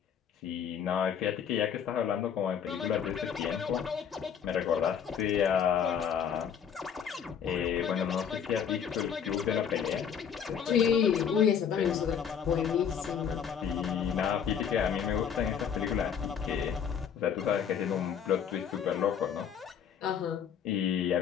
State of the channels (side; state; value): right; quieter; 7.9 dB